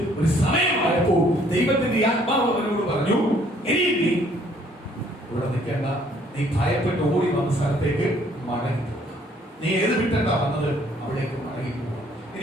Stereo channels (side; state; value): both; normal; correlation 0.62